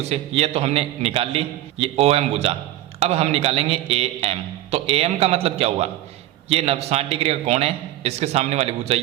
से, ये तो हमने निकाल ली, ये ओ एम भुजा। अब हम निकालेंगे ए एम, तो ए एम का मतलब क्या हुआ, ये 60 डिग्री का कोण है, इसके सामने वाली भुजा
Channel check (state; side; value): quieter; left; 14.5 dB